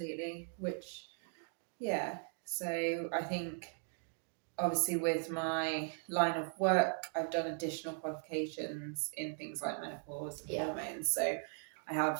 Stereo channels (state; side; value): silent; left; 52 dB below the other